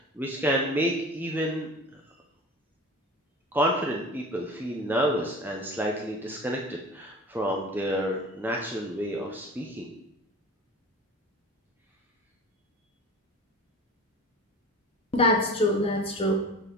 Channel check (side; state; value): both; normal; correlation 0.37